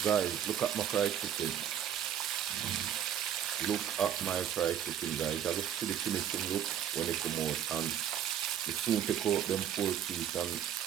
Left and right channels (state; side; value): quieter; left; 9.8 dB